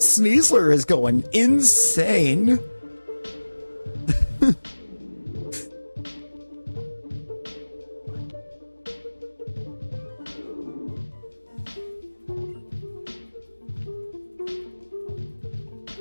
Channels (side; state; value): both; inverted; correlation -1.00